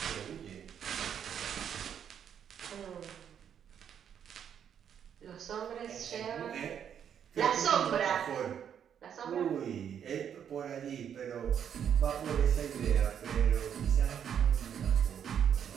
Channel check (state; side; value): quieter; left; 8.6 dB